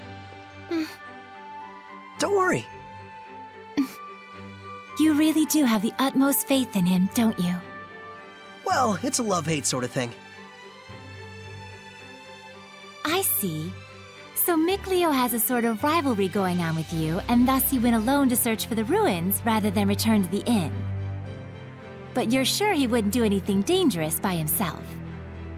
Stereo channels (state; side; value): identical; both; correlation 1.00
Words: Don't worry. You really do have the utmost faith in him, don't you? Well, it's a love-hate sort of thing. I see. So Mikleo has a sort of rivalry going on with you, and thus he went alone to search for the ruins rather than return to the inn. But you're sure he wouldn't do anything dangerous by himself.